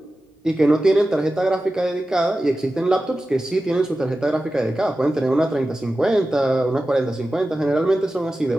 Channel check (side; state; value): both; normal; correlation 0.94